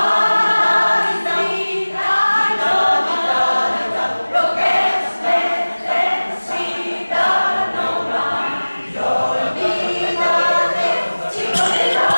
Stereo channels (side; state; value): both; inverted; correlation -1.00